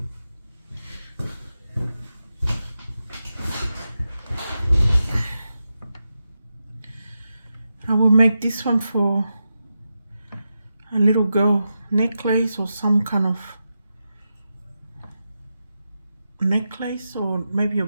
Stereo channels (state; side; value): inverted; both; correlation -0.89